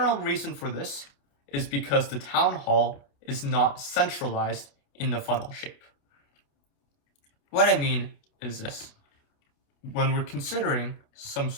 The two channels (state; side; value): late; right; 28 ms